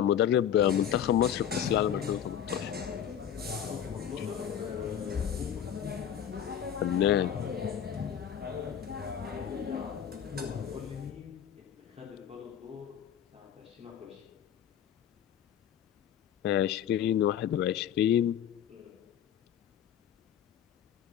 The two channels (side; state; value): right; quieter; 9.5 dB